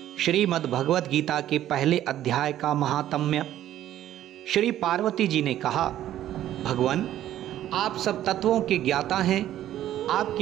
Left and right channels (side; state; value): left; quieter; 12.4 dB